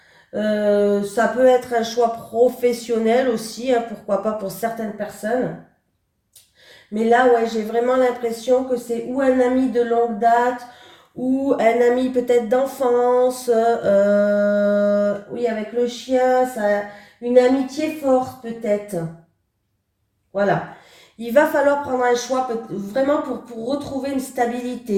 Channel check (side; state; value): both; identical; correlation 1.00